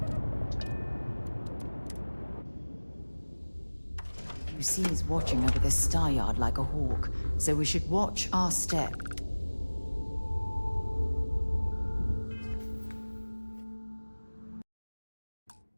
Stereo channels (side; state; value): both; inverted; correlation -1.00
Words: UC is watching over this star yard like a hawk, so we should watch our step.